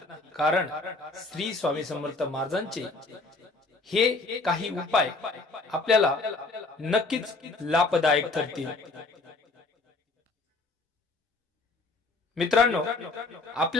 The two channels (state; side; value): quieter; right; 3.5 dB